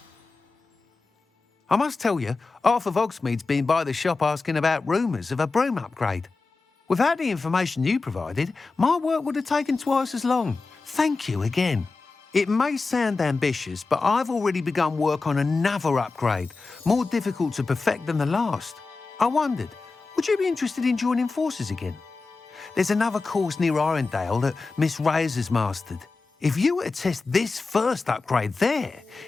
I must tell you, half of Hogsmeade's been by the shop asking about rumours of a broom upgrade. Without the information you provided, my work would have taken twice as long. Thank you again. It may sound ambitious, but I've already begun work on another upgrade, more difficult to perfect than the last. I wondered, would you be interested in joining forces again? There's another course near Irondale that Miss Reyes has mastered. If you were to test this first upgrade there,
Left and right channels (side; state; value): right; quieter; 3.9 dB